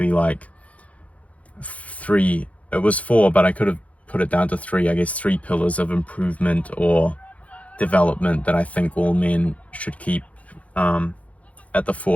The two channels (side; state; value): right; late; 0.066 ms